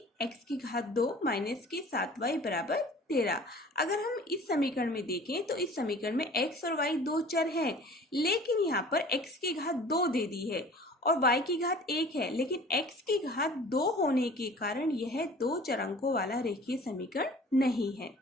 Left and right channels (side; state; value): both; normal; correlation 0.46